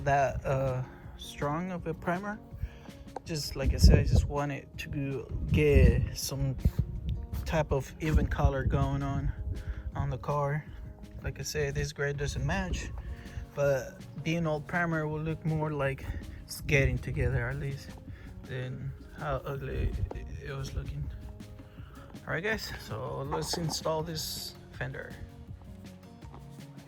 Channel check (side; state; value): both; identical; correlation 1.00